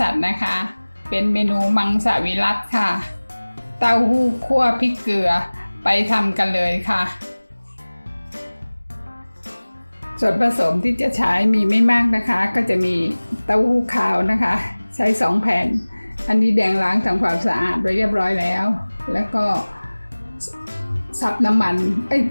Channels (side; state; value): both; inverted; correlation -1.00